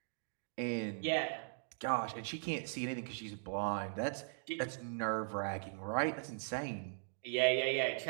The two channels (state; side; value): silent; left; digital silence